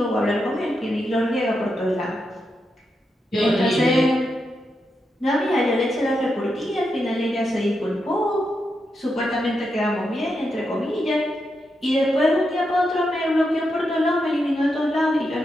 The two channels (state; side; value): normal; both; correlation 0.85